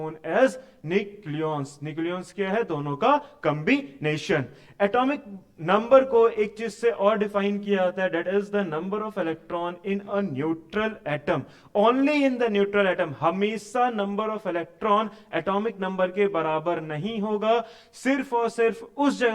as nucleons। nucleons क्या है? दोनों का combination। Atomic number को एक चीज से और डिफाइन किया जाता है, that is the number of electron in a neutral atom. Only in the neutral atom. हमेशा number of electron atomic number के बराबर नहीं होगा, सिर्फ और सिर्फ उस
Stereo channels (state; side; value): identical; both; correlation 1.00